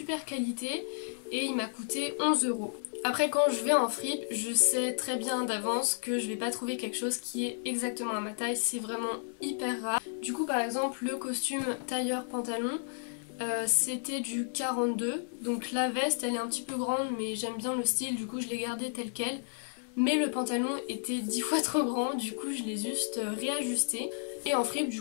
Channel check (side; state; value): right; silent; 56 dB below the other